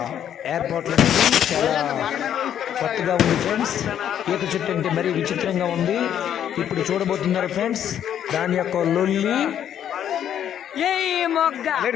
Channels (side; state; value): right; quieter; 9.9 dB